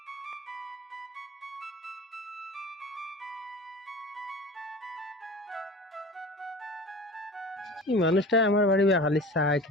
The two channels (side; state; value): both; normal; correlation 0.37